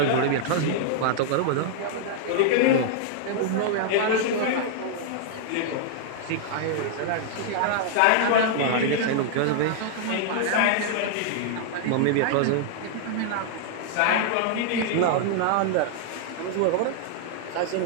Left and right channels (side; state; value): both; different; correlation -0.01